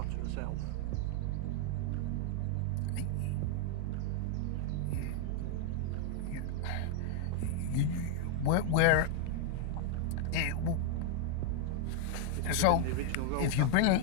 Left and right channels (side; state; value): both; different; correlation 0.00